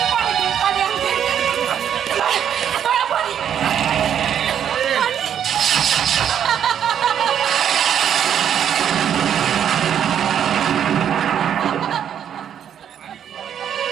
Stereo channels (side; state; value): left; quieter; 9.2 dB